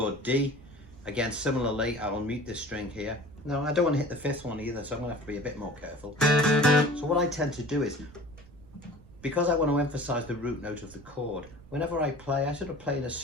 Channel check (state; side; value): noise; right; rumble, 22 dB below the sound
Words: D, again, similarly, I will mute this string here. No, I don't want to hit the 5th one either, so I'm going to have to be a bit more careful. So what I tend to do is, because I want to emphasize the root note of the chord, whenever I play, I sort of play in a